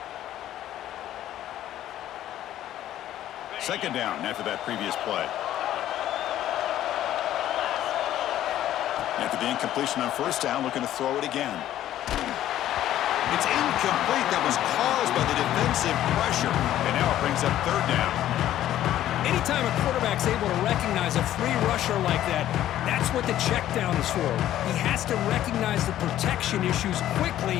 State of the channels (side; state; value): right; quieter; 12.6 dB